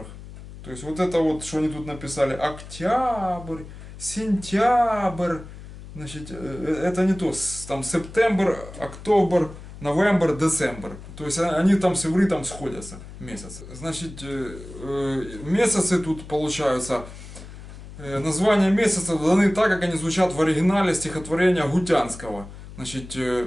То есть вот это вот, что они тут написали, октябрь, сентябрь, значит, это не то, там сентябрь, октобер, новембр, децембр. То есть они там с ивритом сходятся, месяцы. Значит, месяцы тут получаются, названия месяцев даны так, как они звучат в оригинале стихотворения Гутянского. Значит,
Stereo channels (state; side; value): noise; left; hum, 15 dB below the sound